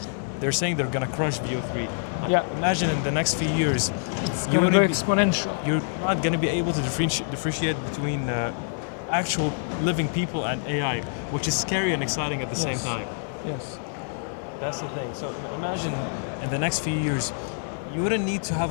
They're saying they're gonna crush VO3. Imagine in the next few years, you would be exponential. You're not gonna be able to differentiate between actual living people and AI, which is scary and exciting at the same time. Yes. That's the thing. So imagine in the next few years, you wouldn't need to have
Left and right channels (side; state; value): right; silent; digital silence